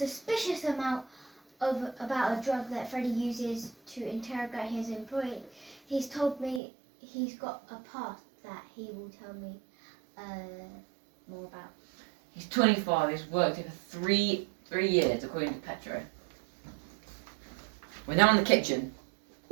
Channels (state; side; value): drops out; left; at 6.6 s